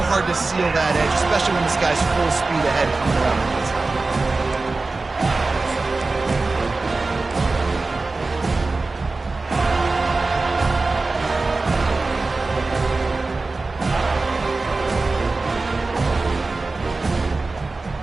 hard to seal that edge, especially when this guy's full speed ahead coming around the inside.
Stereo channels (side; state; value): left; quieter; 3.6 dB